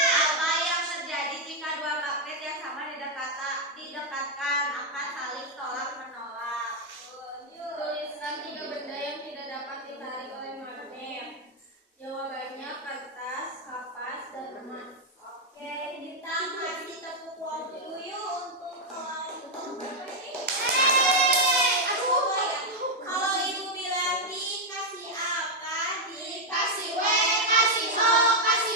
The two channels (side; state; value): both; normal; correlation 0.01